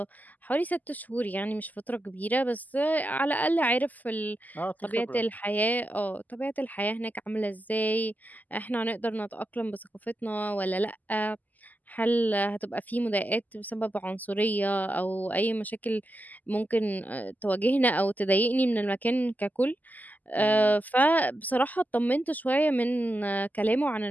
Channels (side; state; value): right; late; 0.081 ms